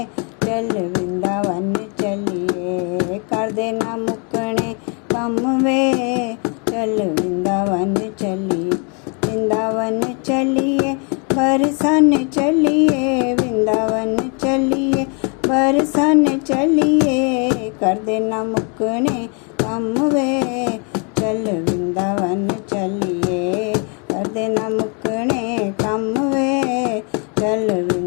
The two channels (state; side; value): quieter; right; 35.9 dB